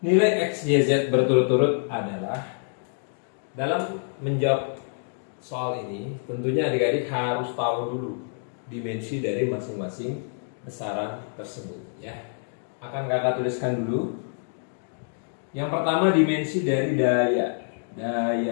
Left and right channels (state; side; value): silent; right; digital silence